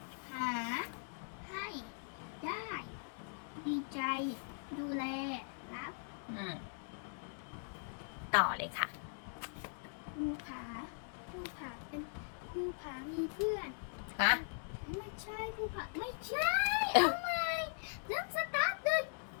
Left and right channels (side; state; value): right; silent; digital silence